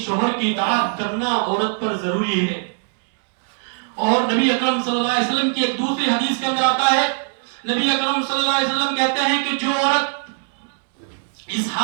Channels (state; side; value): silent; left; 60 dB below the other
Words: شوہر کی اطاعت کرنا عورت پر ضروری ہے۔ اور نبی اکرم صلی اللہ علیہ وسلم کی ایک دوسری حدیث کے اندر آتا ہے، نبی اکرم صلی اللہ علیہ وسلم کہتے ہیں کہ جو عورت اس